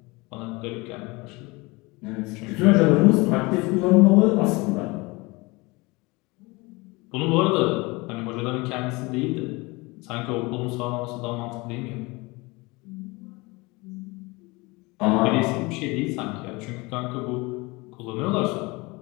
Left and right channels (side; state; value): right; quieter; 24.6 dB